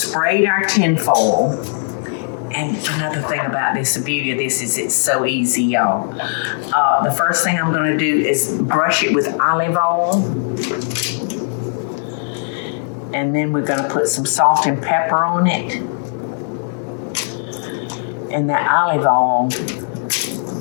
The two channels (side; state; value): right; silent; digital silence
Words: our tinfoil. And another thing about this, the beauty of this is it's so easy, y'all. The first thing I'm going to do is brush it with olive oil. And then we're going to put some salt and pepper on it. And that olive oil,